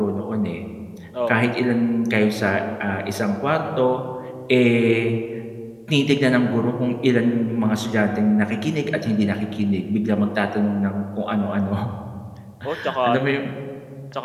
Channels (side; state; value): both; identical; correlation 1.00